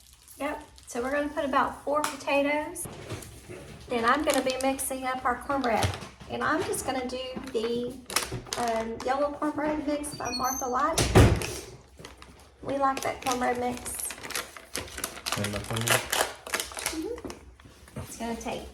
Yep. So we're gonna put about 4 potatoes. Then I'm gonna be mixing up our cornbread. And I'm just gonna do the yellow cornbread mix by Martha White. We like that cornbread mix. It's gonna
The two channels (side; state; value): both; identical; correlation 1.00